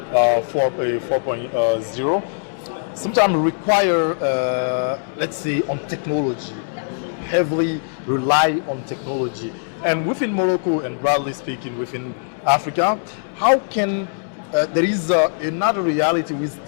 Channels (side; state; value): right; silent; digital silence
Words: 4.0, sometimes require, let's say, on technology, heavily rely on technology. And within Morocco, and broadly speaking within Africa, how can there is another reality with